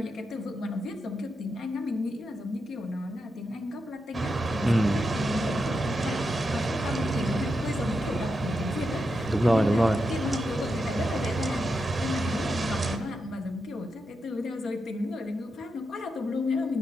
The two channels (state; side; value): normal; both; correlation 0.87